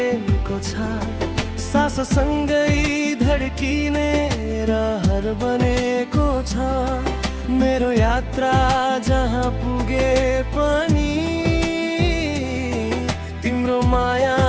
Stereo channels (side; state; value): both; identical; correlation 1.00